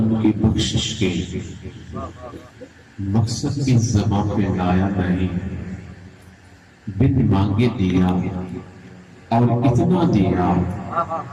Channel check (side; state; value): both; identical; correlation 1.00